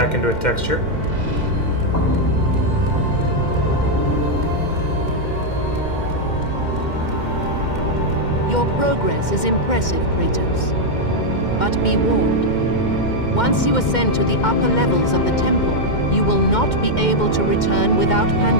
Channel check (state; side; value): late; right; 2.1 ms